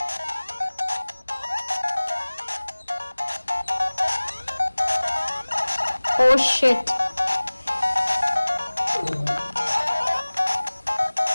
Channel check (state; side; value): inverted; both; correlation -1.00